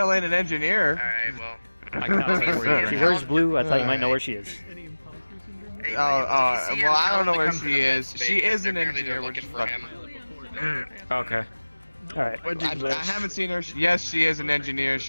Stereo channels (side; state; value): both; inverted; correlation -1.00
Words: ain't an engineer. Alright, well. I cannot tell you where She wears blue. I thought you might know where she is. Well, I don't know where she is. She is an engineer. We're just fucking. Okay. All right. I haven't seen her. Yes, she is an engineer.